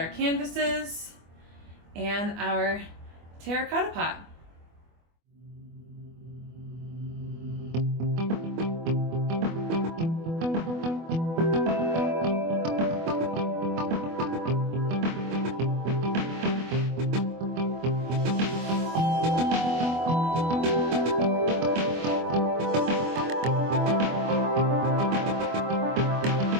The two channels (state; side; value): late; left; 24 ms